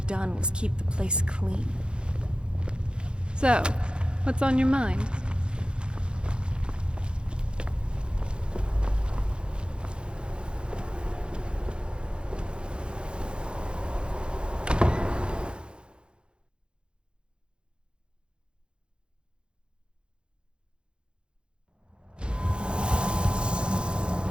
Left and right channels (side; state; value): left; late; 0.053 ms